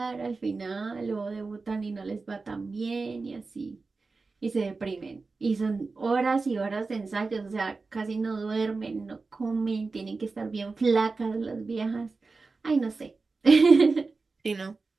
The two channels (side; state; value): left; quieter; 4.0 dB